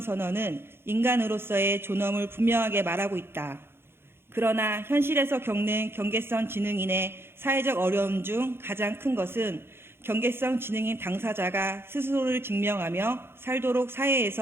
인간으로서의 존엄을 분명하게 말하고 있다. 그러나 현실에서 겪는 경계선 지능인의 사회적 어려움 중 가장 큰 것은 경계선 지능인 당사자가 스스로를 증명하며 살도록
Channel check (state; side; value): late; left; 0.11 ms